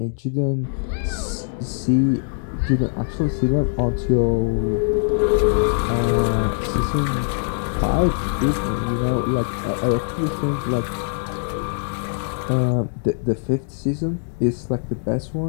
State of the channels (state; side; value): silent; right; digital silence